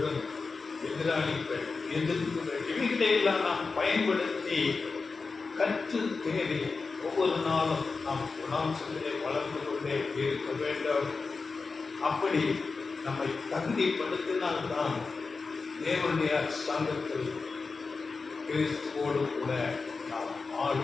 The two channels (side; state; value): right; quieter; 4.4 dB